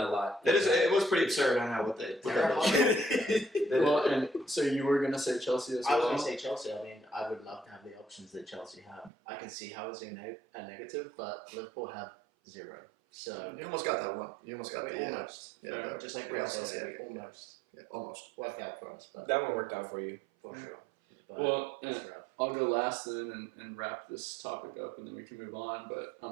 a lot. It was pretty absurd. I know what they did. Well, and so you were going to say Chelsea as I was well? going to say Chelsea. I mean, I would love to have the options that Chelsea have. I can see how it's a negative, but Liverpool have 0. So You almost got that one. You almost got the almost. Yeah, Just like Real Real Sociedad. Sociedad, almost Yeah, almost. worked out for us, but That one worked out for you. for sure. But Well, it's rough. I'll go last then and wrap this topic up, and then we can move on. But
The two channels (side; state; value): left; drops out; at 9.1 s